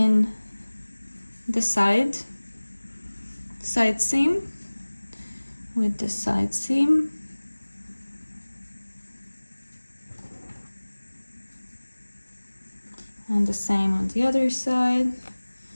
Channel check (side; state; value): both; inverted; correlation -1.00